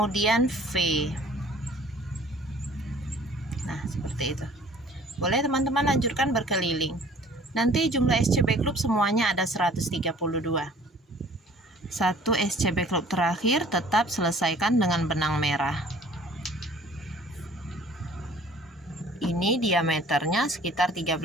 V. Nah, seperti itu. Boleh teman-teman lanjutkan berkeliling. Nanti jumlah SC backloop semuanya ada 132. 1 SC backloop terakhir tetap selesaikan dengan benang merah. Ini diameternya sekitar 13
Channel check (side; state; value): both; normal; correlation 0.52